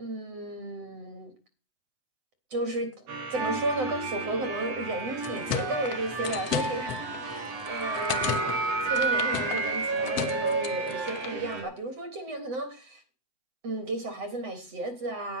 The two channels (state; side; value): late; left; 7.9 ms